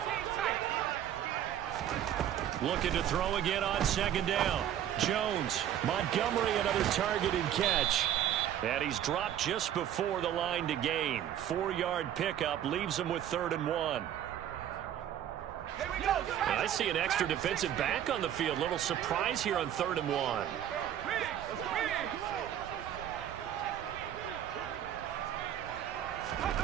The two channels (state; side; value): quieter; left; 10.7 dB